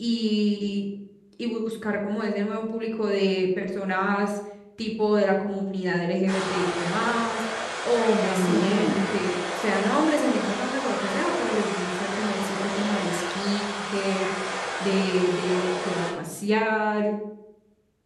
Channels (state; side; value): identical; both; correlation 1.00